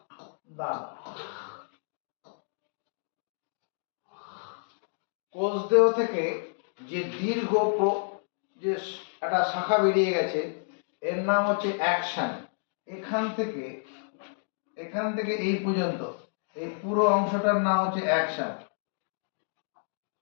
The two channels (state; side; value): silent; right; digital silence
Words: দানা। কোষদেহ থেকে যে দীর্ঘ যে একটা শাখা বেরিয়ে গেছে এর নাম হচ্ছে অ্যাকশন। এখান থেকে এই পর্যন্ত এই পুরো অংশটার নাম হচ্ছে অ্যাকশন।